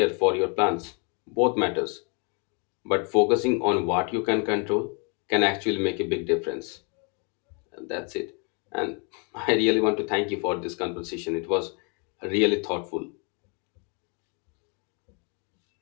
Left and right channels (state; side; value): quieter; right; 35.6 dB